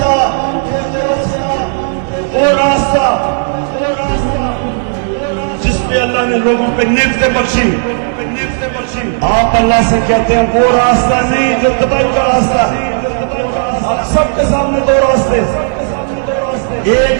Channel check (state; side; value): silent; left; digital silence